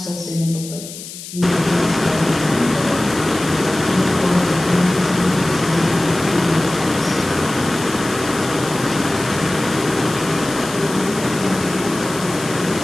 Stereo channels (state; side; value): noise; left; hiss, 12 dB below the sound